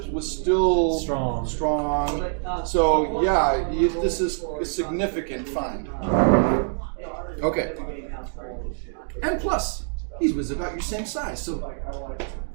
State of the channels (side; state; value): left; silent; 62 dB below the other